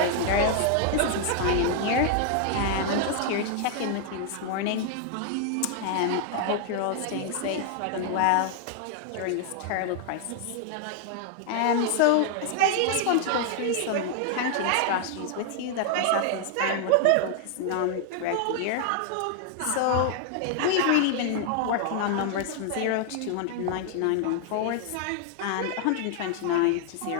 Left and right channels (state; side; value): different; both; correlation 0.00